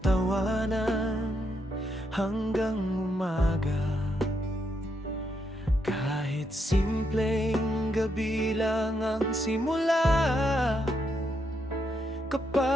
tawanan hanggang umaga. Kahit simpleng gabi lang ang simula,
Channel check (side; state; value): both; normal; correlation 0.79